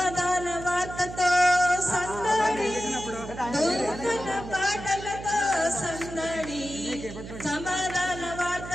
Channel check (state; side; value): noise; right; hum, 11 dB below the sound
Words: వార్తతో సందడి, దూతల పాటలతో సందడి, సమాధాన